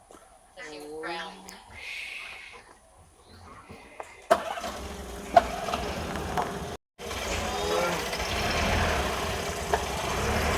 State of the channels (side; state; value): both; identical; correlation 1.00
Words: So she was growling.